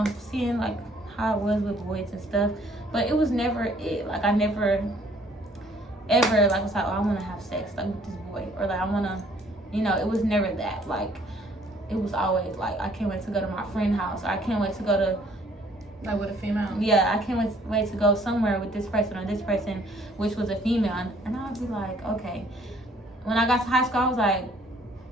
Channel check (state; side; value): normal; both; correlation 0.60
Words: seeing like how it was with boys and stuff. But it was never it. Like I never ever like was like, oh, I want to have sex like with this boy, or like I want to, you know, it was never that. Like it was always like, I can't wait to go to my friend's house, or I can't wait to go to, like with a female. Yeah, I can't wait to go somewhere with this person or this person, which was a female. And I'd be like, okay. When I got to high school, I was like,